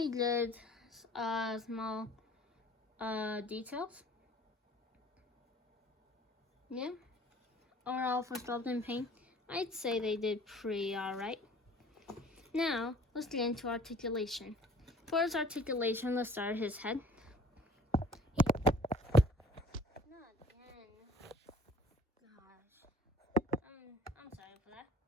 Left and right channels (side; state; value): both; normal; correlation 0.52